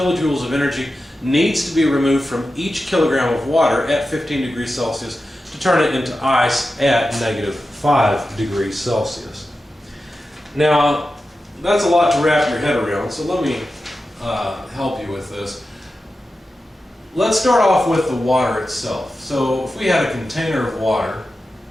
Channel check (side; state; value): both; normal; correlation 0.92